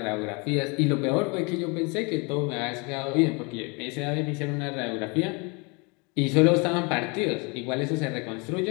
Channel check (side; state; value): right; quieter; 30.5 dB